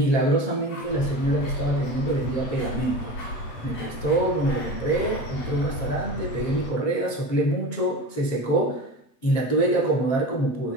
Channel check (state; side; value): late; right; 8.1 ms